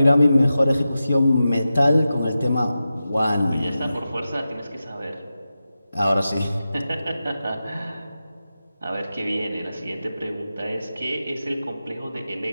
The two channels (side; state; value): both; inverted; correlation -0.92